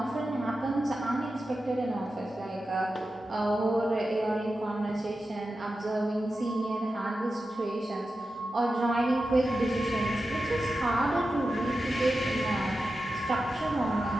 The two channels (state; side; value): normal; both; correlation 0.92